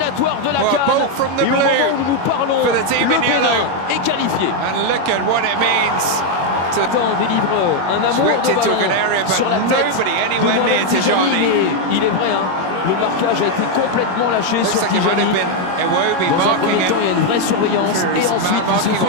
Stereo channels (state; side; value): late; left; 22 ms